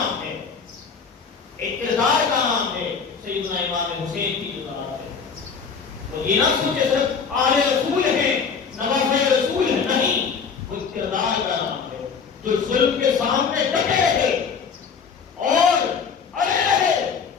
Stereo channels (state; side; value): quieter; right; 5.9 dB